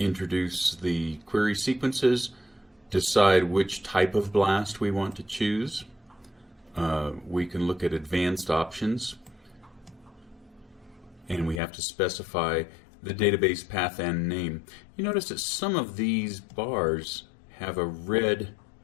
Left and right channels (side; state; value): right; drops out; at 11.6 s